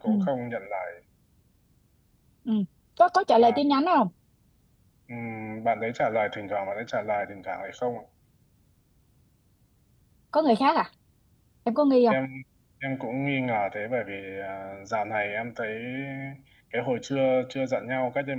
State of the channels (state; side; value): identical; both; correlation 1.00